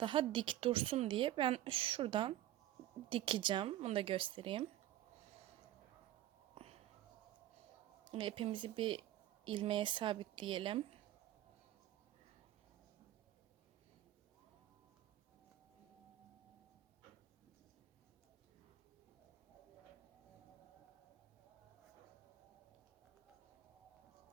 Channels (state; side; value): quieter; left; 13.7 dB